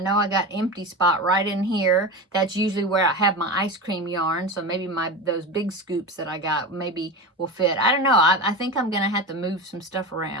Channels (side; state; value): both; normal; correlation 0.25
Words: I got empty spot right in here. That's usually where I have my ice cream yarn, so maybe those big scoops that I got maybe will fit. I don't know. I think I'm going to have to move some stuff